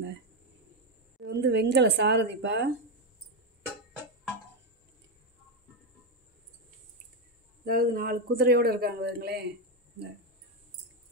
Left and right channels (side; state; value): both; normal; correlation 0.08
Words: இது வந்து வெங்கல சாரதிப்பா. அதாவது 4 குதிரையோடு இருக்காங்க. பாருங்களேன்,